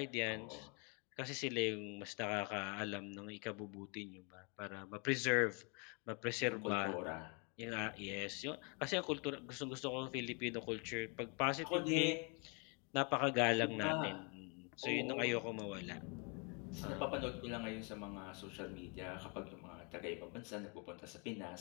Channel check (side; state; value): right; quieter; 34.2 dB